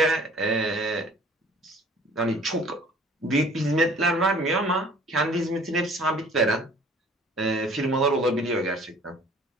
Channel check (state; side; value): normal; both; correlation 0.51